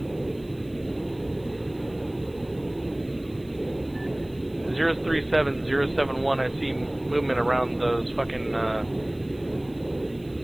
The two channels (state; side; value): noise; right; hiss, 27 dB below the sound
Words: 037071, I see movement around those fucking